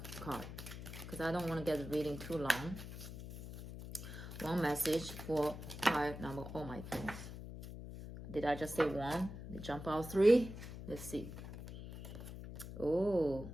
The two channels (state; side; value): noise; left; hum, 10 dB below the sound